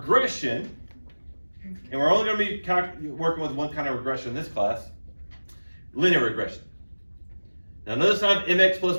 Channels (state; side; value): inverted; both; correlation -1.00